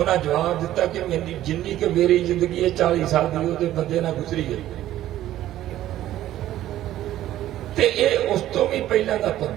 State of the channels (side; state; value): left; quieter; 13.4 dB